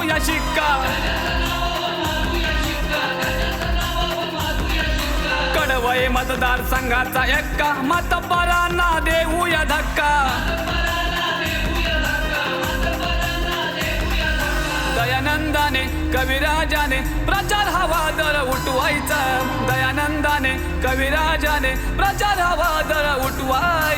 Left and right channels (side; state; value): both; identical; correlation 1.00